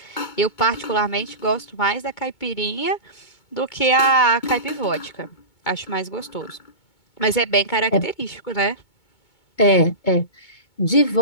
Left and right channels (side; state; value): right; late; 2.2 ms